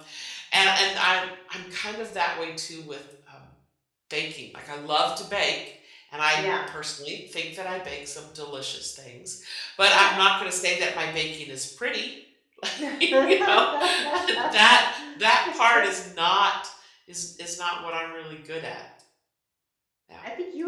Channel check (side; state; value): both; identical; correlation 1.00